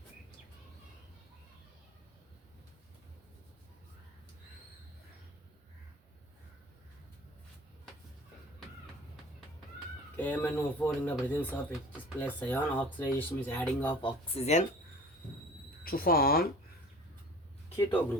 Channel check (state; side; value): normal; both; correlation 0.42